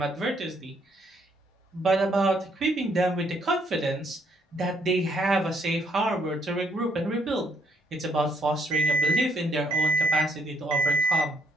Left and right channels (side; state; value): both; normal; correlation 0.70